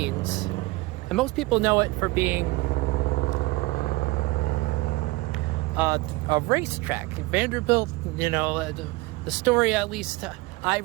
And most people know it for being a racetrack. Vanderbilt, the story, at least I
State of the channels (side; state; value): left; quieter; 22.2 dB